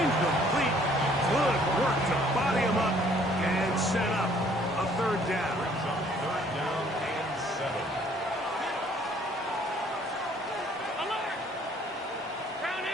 Incomplete. Good work to body him up and set up a third down. Third down and 7. Alert! Round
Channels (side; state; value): both; normal; correlation 0.60